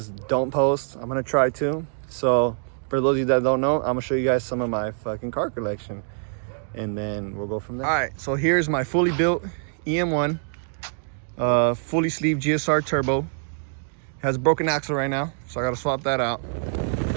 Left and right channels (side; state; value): left; silent; digital silence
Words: don't post. I'm gonna try to. So for those of you that don't know, I'm gonna show you guys some of my fucking car collection, and then we'll go from there. All right, so here's my fully built EM1, fully sleeved GSR turbo. It has a broken axle right now, so I gotta swap that out.